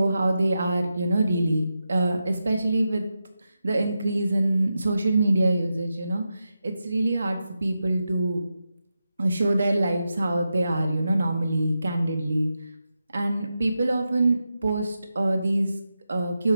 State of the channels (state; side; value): inverted; both; correlation -0.89